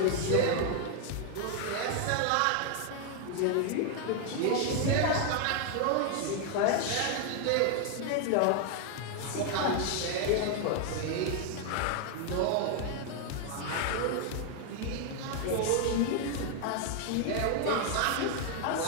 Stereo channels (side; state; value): both; different; correlation 0.00